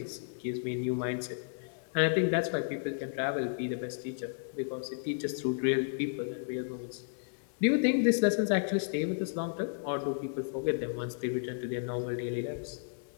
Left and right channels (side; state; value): right; silent; digital silence